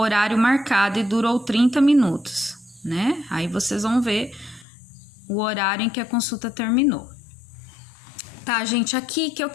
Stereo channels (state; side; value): drops out; right; at 4.7 s